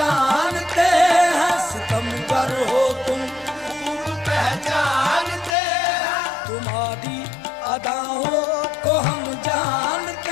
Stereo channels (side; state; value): right; drops out; at 5.6 s